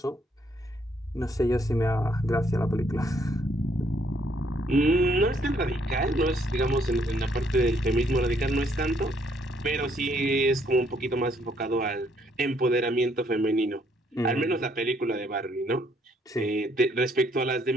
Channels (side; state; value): both; normal; correlation 0.69